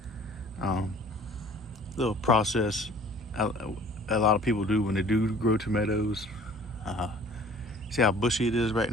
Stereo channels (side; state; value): both; normal; correlation 0.50